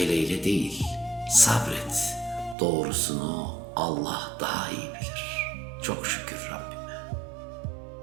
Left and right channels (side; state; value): left; drops out; at 2.6 s